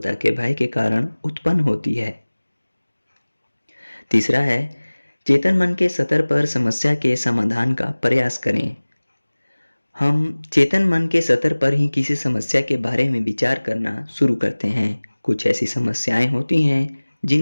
के भय के कारण उत्पन्न होती है। तीसरा है, चेतन मन के स्तर पर समस्या के समाधान का प्रयास करें। हम चेतन मन के स्तर पर ही किसी समस्या के बारे में विचार करना शुरू करते हैं। कुछ ऐसी समस्याएं होती हैं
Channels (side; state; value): both; inverted; correlation -1.00